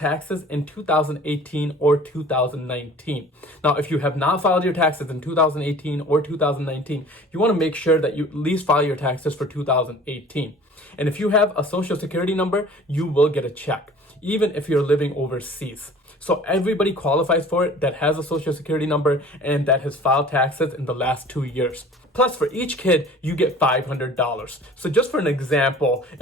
in 2018 or 2019. Now, if you have not filed your taxes in 2018 or 2019, you want to make sure that you at least file your taxes for 2018. And if you have a social security number, you will get a check, even if you're living overseas. So everybody qualifies for it that has a social security number and that has filed taxes in the last 2 years. Plus, for each kid, you get $500. So just for an example,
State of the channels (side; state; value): both; normal; correlation 0.46